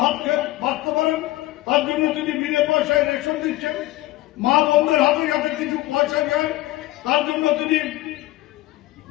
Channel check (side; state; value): right; quieter; 17.6 dB